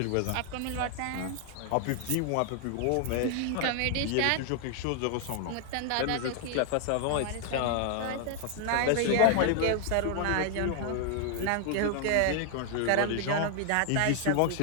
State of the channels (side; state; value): both; different; correlation 0.00